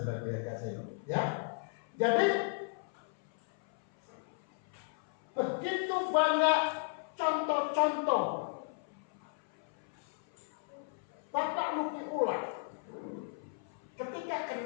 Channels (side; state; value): right; silent; 54 dB below the other